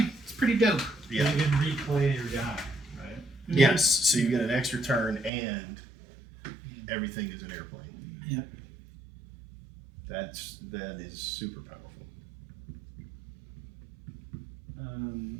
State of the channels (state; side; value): drops out; left; at 5.3 s